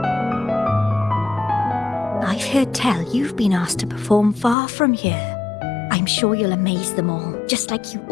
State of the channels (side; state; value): right; drops out; at 4.5 s